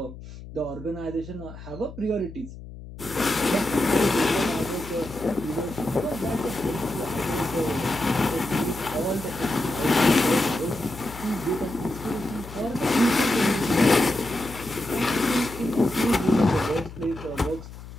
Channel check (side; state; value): left; noise; hum, 14 dB below the sound